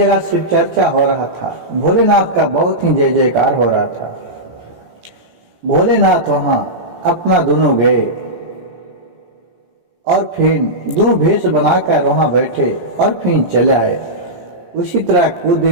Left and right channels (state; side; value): late; left; 17 ms